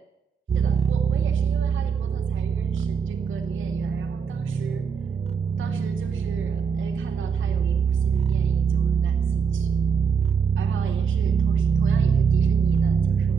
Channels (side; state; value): left; quieter; 6.3 dB